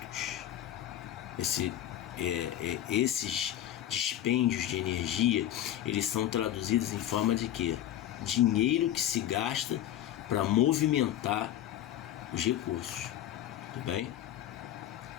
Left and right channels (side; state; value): right; quieter; 12.1 dB